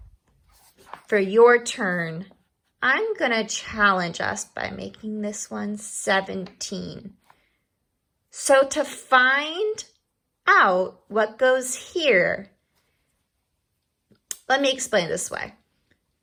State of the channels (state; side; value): identical; both; correlation 1.00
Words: for your turn, I'm going to challenge us by making this one 17. So to find out what goes here, let me explain it this way.